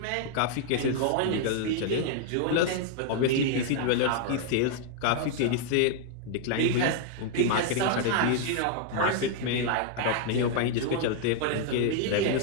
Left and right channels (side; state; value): both; different; correlation 0.00